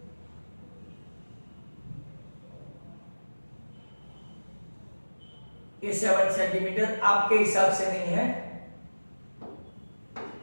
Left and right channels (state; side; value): inverted; both; correlation -1.00